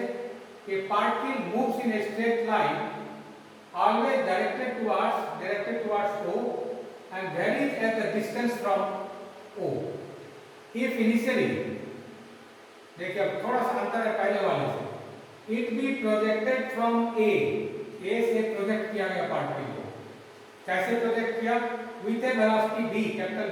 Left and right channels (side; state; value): both; identical; correlation 1.00